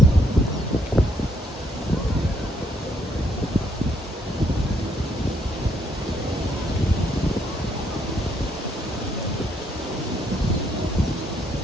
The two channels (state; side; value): normal; both; correlation 0.71